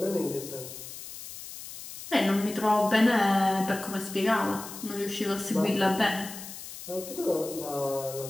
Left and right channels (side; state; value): left; noise; hiss, 12 dB below the sound